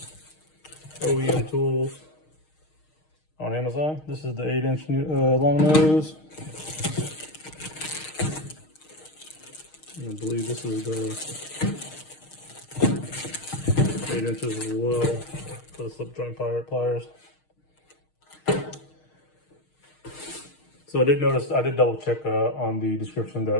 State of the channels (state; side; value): late; right; 6.5 ms